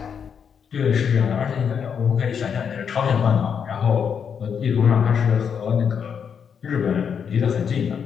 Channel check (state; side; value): quieter; right; 7.2 dB